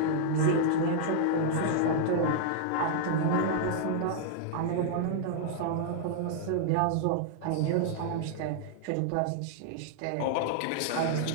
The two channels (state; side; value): different; both; correlation -0.01